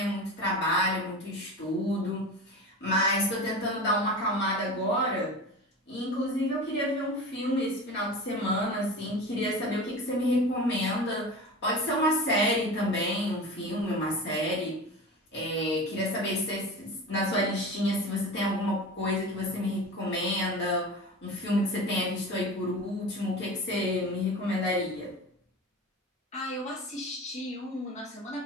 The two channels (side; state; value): both; normal; correlation 0.31